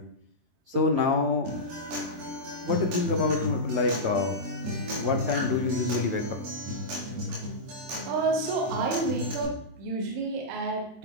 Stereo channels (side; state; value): left; late; 23 ms